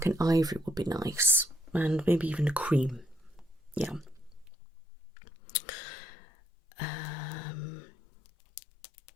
an ivory would be nice, and maybe even a cream. Yeah.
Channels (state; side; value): drops out; right; at 4.5 s